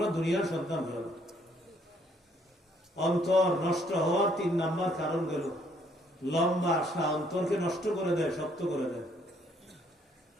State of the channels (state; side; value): normal; both; correlation 0.66